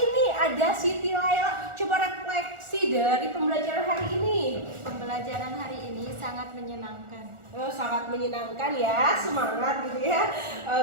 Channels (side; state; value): left; late; 1.4 ms